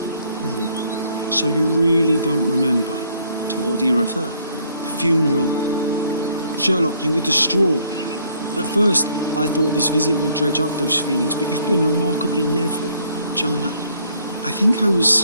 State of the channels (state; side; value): inverted; both; correlation -0.65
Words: So you really don't remember? To what do you refer? The funeral. Sherlock, you were distraught. At first, I thought this visit would dredge up those feelings, but you've been remarkably level. John, I think I